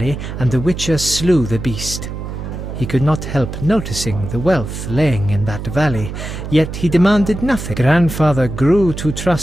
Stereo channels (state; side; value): noise; right; hum, 7 dB below the sound